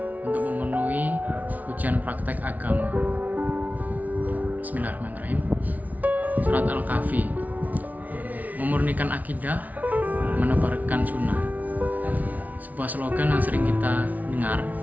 untuk memenuhi ujian praktek agama. Bismillahirrahmanirrahim. Surat Al-Kahfi, memurnikan akidah, menebarkan sunnah. Sebuah slogan yang sering kita dengar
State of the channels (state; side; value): late; left; 0.074 ms